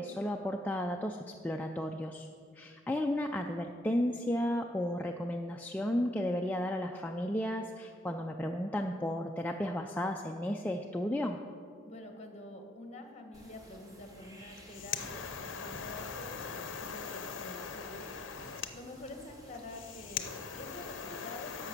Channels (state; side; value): normal; both; correlation 0.74